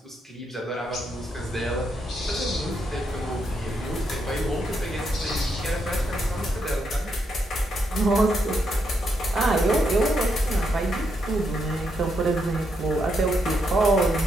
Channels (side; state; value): both; normal; correlation 0.79